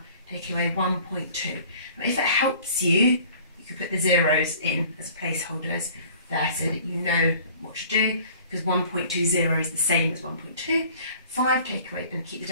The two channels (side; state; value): both; inverted; correlation -0.50